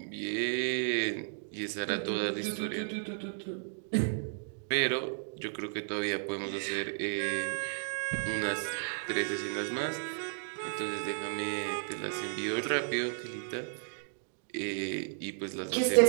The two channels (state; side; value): silent; left; digital silence